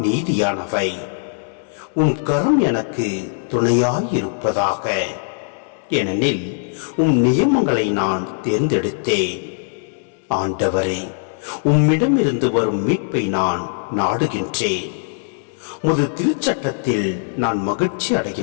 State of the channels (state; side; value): silent; right; 62 dB below the other